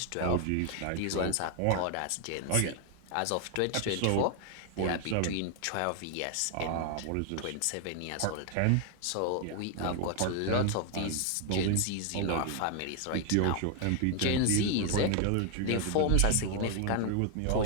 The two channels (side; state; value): both; different; correlation 0.00